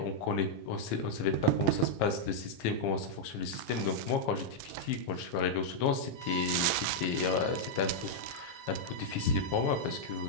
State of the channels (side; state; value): both; normal; correlation -0.03